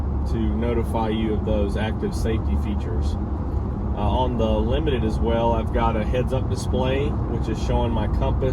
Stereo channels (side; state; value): both; identical; correlation 1.00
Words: to notify you of those active safety features. On the Limited as well, I've got a heads-up display which is showing my